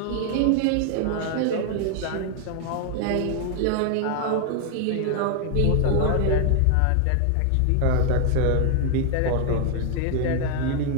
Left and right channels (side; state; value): both; different; correlation 0.00